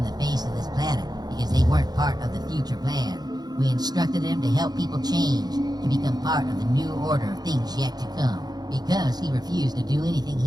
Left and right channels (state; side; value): late; left; 0.19 ms